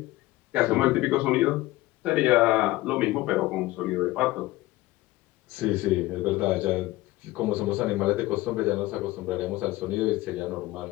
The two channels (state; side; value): quieter; right; 18.5 dB